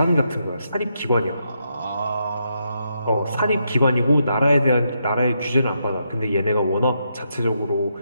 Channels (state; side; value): inverted; both; correlation -0.80